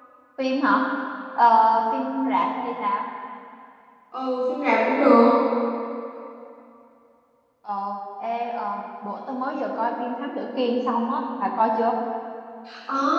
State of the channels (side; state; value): both; identical; correlation 1.00